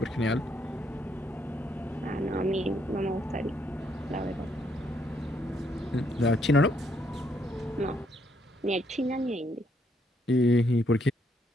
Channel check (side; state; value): both; normal; correlation 0.72